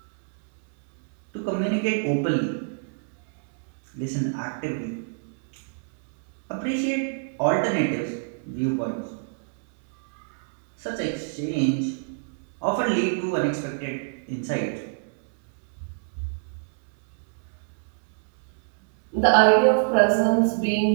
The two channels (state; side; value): silent; left; digital silence